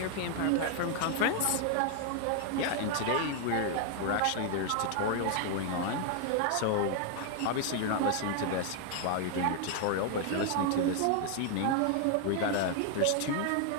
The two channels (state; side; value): different; both; correlation 0.00